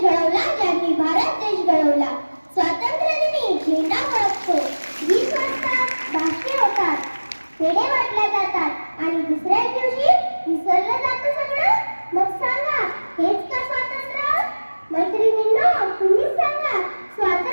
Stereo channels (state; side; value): inverted; both; correlation -1.00